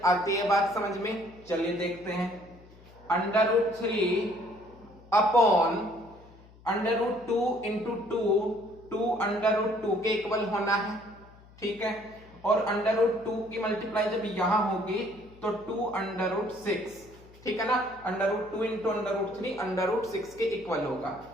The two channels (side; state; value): left; noise; hum, 24 dB below the sound